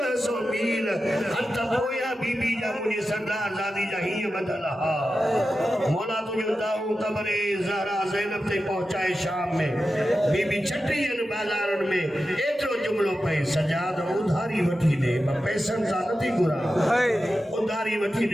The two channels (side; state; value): both; normal; correlation 0.92